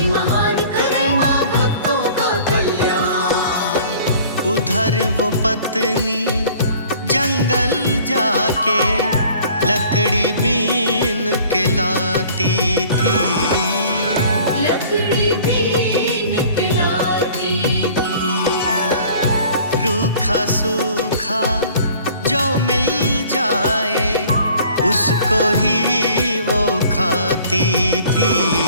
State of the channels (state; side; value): inverted; both; correlation -0.50